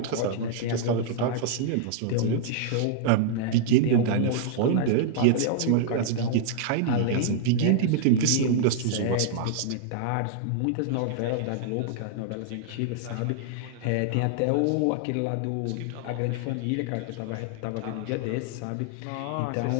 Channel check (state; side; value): different; both; correlation -0.01